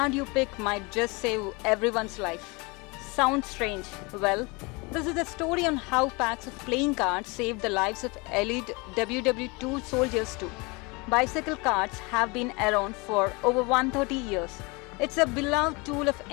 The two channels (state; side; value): quieter; right; 27.4 dB